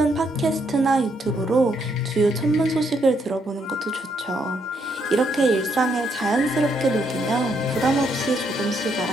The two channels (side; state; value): both; normal; correlation 0.74